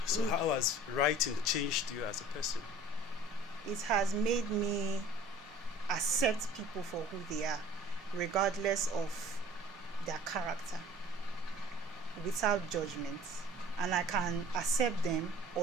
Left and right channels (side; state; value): both; normal; correlation 0.47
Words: So how has writing changed you as a person? It has made me accept people for who they are, regardless of their character, without judgment. And I can accept them